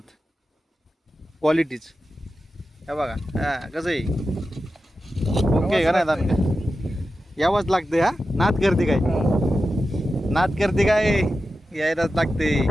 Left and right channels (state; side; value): normal; both; correlation 0.92